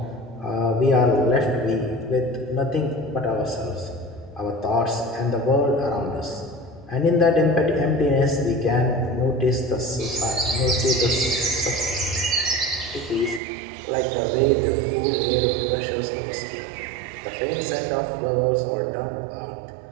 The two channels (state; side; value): drops out; left; at 13.4 s